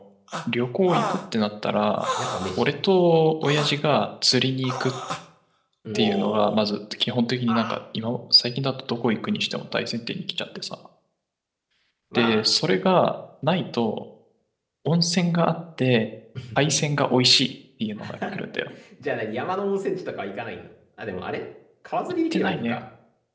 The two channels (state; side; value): identical; both; correlation 1.00